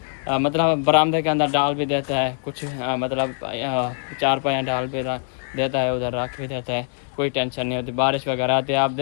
मतलब बरामदे के अंदर डाल भी देता है कुछ, मतलब 4 पाया डाल भी देता है, उधर रख भी देता है, कोई टेंशन नहीं होती। बारिश वगैरह आती है, आप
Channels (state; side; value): silent; right; 64 dB below the other